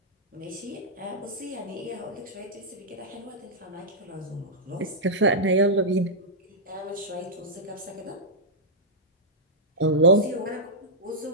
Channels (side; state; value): both; normal; correlation -0.10